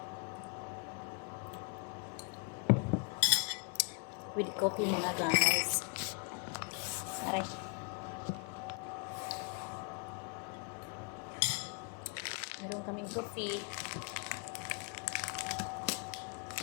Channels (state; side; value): quieter; right; 33.1 dB